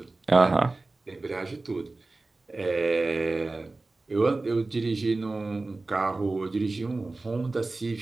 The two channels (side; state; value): left; quieter; 3.3 dB